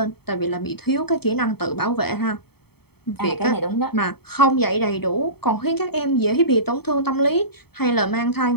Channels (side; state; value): right; late; 0.96 ms